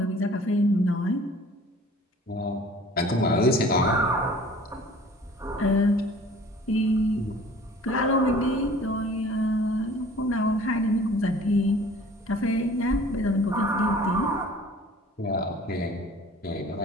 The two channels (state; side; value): normal; both; correlation 0.49